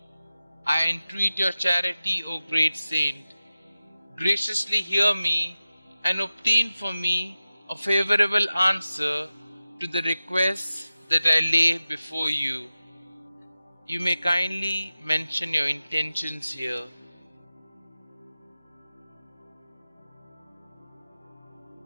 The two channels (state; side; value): inverted; both; correlation -0.95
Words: I entreat your charity, O great saint. Graciously hear me and obtain for me a favorable answer to the requests that I lay before you. You may kindly mention your intentions here.